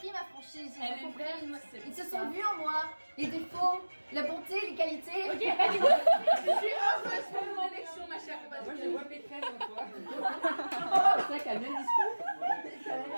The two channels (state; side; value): inverted; both; correlation -1.00